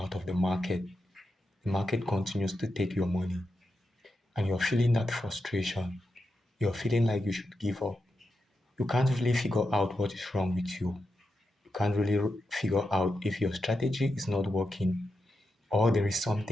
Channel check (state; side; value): normal; both; correlation 0.87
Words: of the market continues to take your money, and you're feeling that frustration. You're feeling like you should give up. You can't really figure out what is wrong with you. You can't really figure out if your strategy is not working or there is